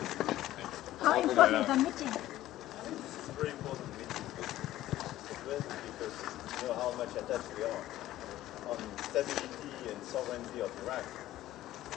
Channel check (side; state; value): right; quieter; 14.5 dB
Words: How important is the meeting? It's a very important meeting. Because you know how much attached we are on stability and sovereignty of Iraq.